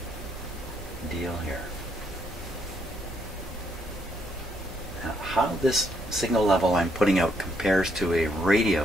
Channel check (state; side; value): normal; both; correlation 0.73